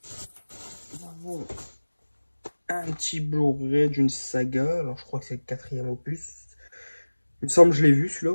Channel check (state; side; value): inverted; both; correlation -1.00